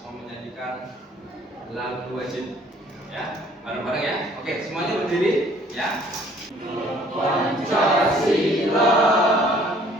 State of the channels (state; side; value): normal; both; correlation 0.57